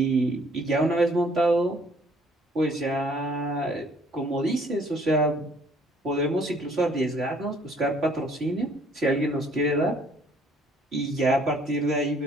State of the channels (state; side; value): normal; both; correlation 0.60